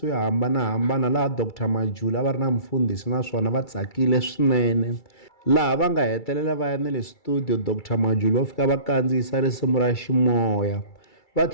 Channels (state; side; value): late; right; 2.3 ms